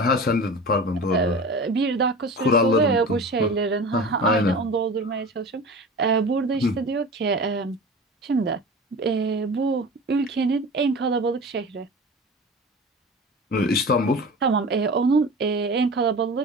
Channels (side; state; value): both; normal; correlation 0.34